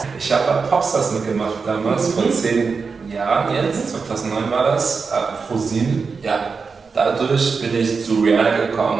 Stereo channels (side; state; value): left; quieter; 5.0 dB